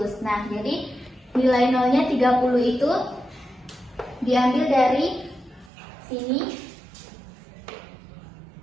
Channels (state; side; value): drops out; left; at 5.7 s